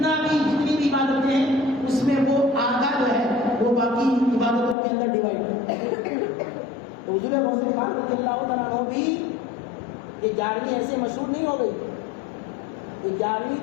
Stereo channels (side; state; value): right; drops out; at 4.8 s